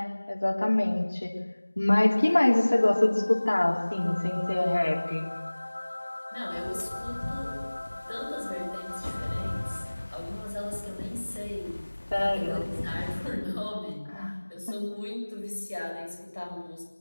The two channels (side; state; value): both; inverted; correlation -1.00